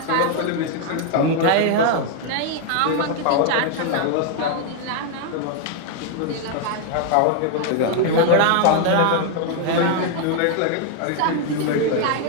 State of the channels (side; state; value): both; different; correlation 0.00